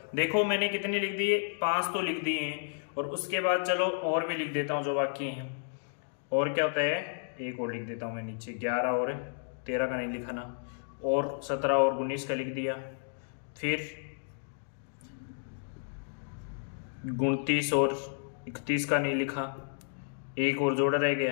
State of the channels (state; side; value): silent; right; digital silence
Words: देखो मैंने कितने लिख दिए, 5 तो लिख दिए हैं, और उसके बाद चलो और भी लिख देता हूं जो बाकी हैं। और क्या होता है, एक और लिख देता हूं मैं नीचे, 11 और 13 का नहीं लिखा ना, और 17 और 19 का लिख दिया। फिर 29 और 31 का नहीं लिखा, एक और जोड़ा रह